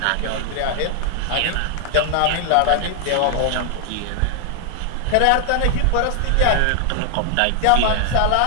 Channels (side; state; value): both; different; correlation 0.00